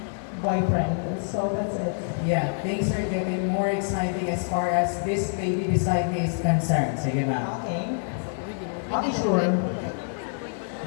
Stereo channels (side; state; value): right; silent; 59 dB below the other